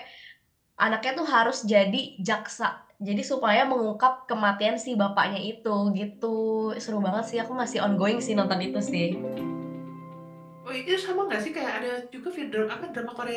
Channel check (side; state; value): both; identical; correlation 1.00